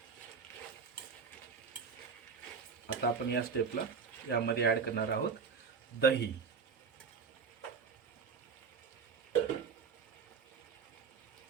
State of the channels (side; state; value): left; quieter; 5.7 dB